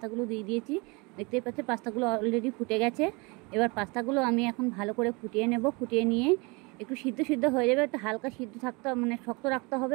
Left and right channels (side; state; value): left; quieter; 28.2 dB